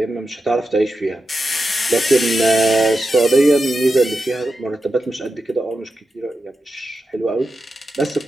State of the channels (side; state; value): both; normal; correlation 0.89